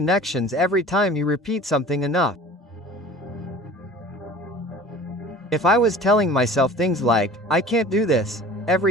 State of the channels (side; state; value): both; normal; correlation 0.43